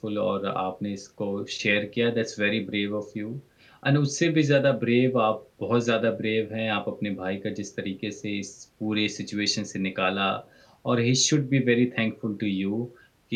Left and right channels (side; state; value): both; identical; correlation 1.00